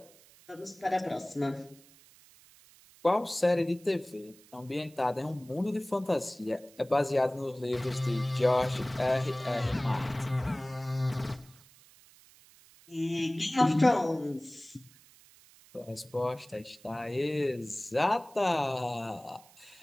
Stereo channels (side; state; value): right; noise; hiss, 25 dB below the sound